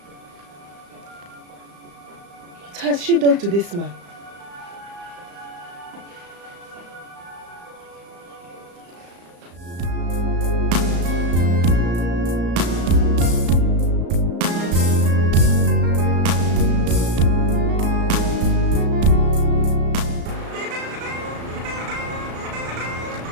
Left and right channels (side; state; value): left; late; 35 ms